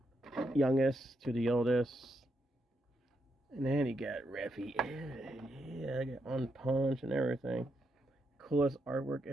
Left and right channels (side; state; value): both; normal; correlation 0.81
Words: youngest to the oldest. And then he got Raphael. Yeah, I got on punch and everything. Coolest artwork